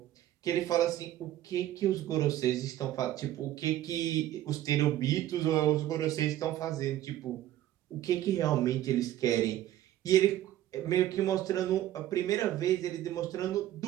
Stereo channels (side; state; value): left; quieter; 13.3 dB